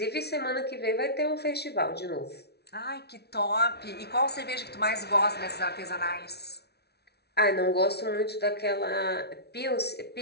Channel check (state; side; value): late; right; 0.48 ms